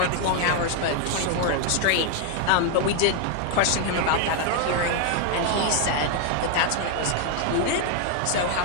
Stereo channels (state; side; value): different; both; correlation 0.00